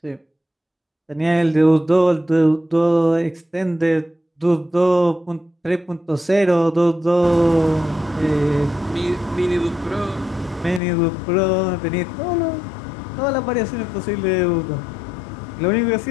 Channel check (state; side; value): drops out; right; at 10.8 s